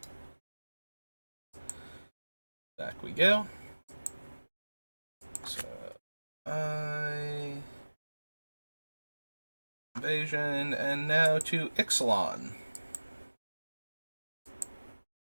Back we go. So, Invasion, and now to Ixalan.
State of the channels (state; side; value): inverted; both; correlation -1.00